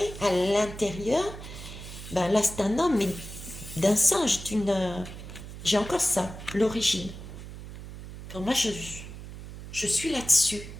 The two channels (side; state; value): right; noise; hum, 12 dB below the sound